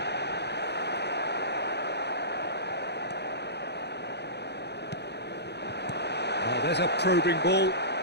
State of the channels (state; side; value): late; right; 0.49 ms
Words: Oh, there's a probing ball.